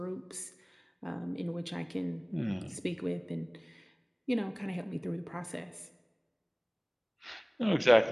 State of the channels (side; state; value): both; identical; correlation 1.00